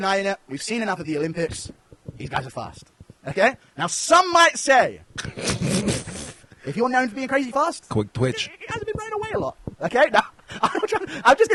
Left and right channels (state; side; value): identical; both; correlation 1.00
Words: it. We've seen enough of the Olympics. These guys are fast. Okay? Now, some might say, if you're known for being crazy fast, Quick twitch. it hasn't been running away a lot. Okay? Now, I'm just